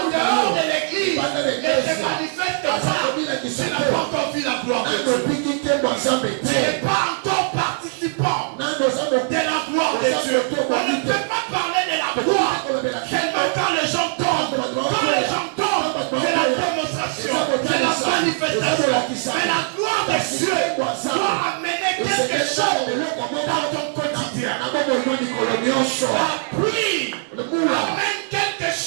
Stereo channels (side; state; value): left; silent; digital silence